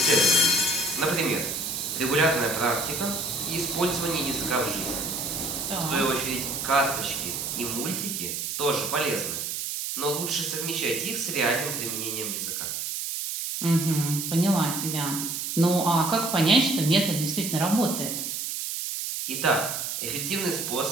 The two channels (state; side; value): noise; right; hiss, 3 dB below the sound